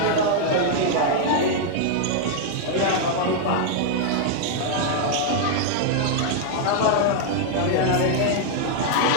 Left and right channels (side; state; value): both; different; correlation -0.01